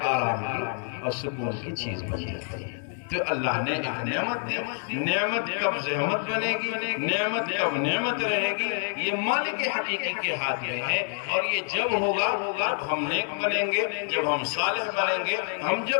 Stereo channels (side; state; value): right; silent; 55 dB below the other